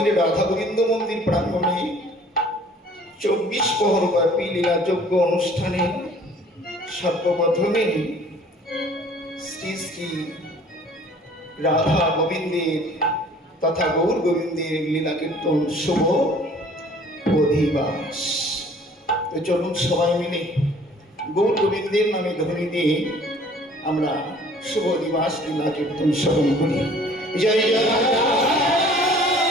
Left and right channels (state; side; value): normal; both; correlation 0.53